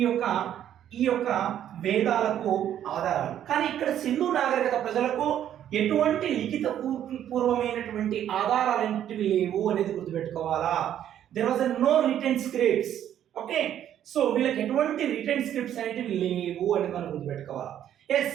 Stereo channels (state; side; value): quieter; left; 10.6 dB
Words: యొక్క వేదాలకు ఆధారాలు. కానీ ఇక్కడ సింధు నాగరికత ప్రజలకు ఎటువంటి లిఖిత పూర్వమైనటువంటి ఆధారాలు ఏంటివి లేవు అనేది గుర్తుపెట్టుకోవాలా. There was no written scripts. Okay, so వీళ్ళకి ఎటువంటి రిటెన్ స్క్రిప్ట్స్ అనేటివి లేవు అనేది మనం గుర్తుపెట్టుకోవాలి. ఎస్,